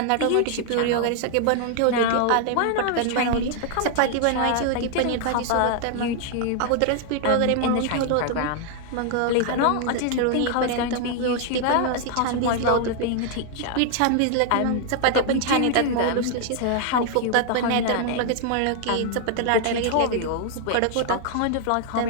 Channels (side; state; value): both; different; correlation 0.00